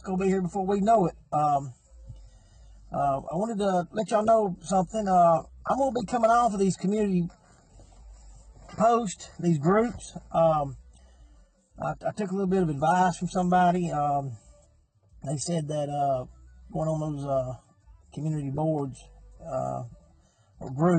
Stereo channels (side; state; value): both; identical; correlation 1.00